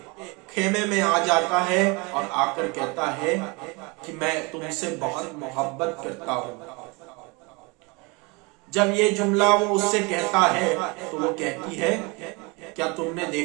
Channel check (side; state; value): left; quieter; 28.3 dB